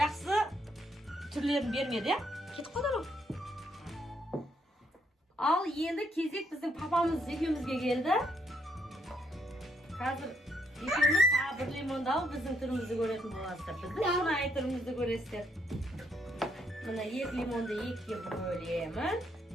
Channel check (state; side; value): normal; both; correlation 0.73